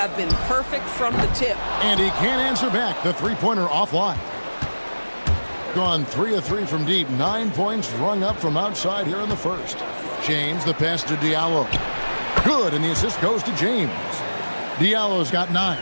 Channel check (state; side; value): inverted; both; correlation -1.00